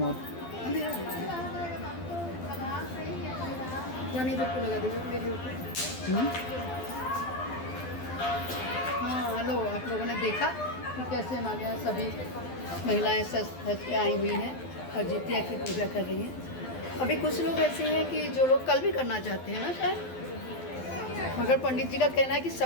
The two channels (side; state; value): right; late; 12 ms